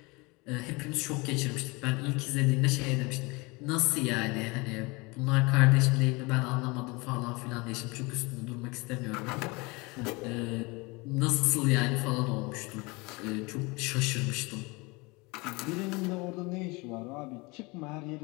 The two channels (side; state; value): right; quieter; 26.0 dB